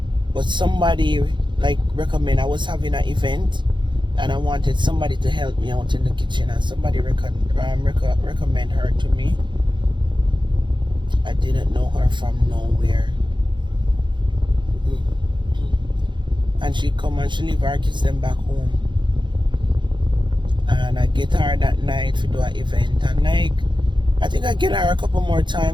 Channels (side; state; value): left; late; 0.23 ms